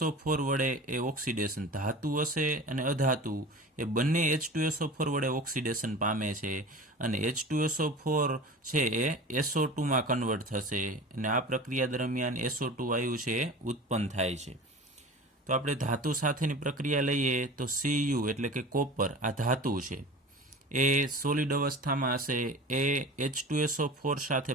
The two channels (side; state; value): both; normal; correlation 0.36